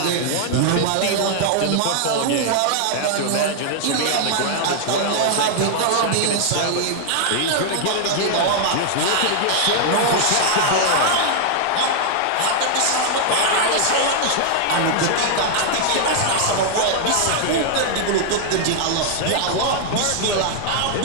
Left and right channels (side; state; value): both; different; correlation -0.01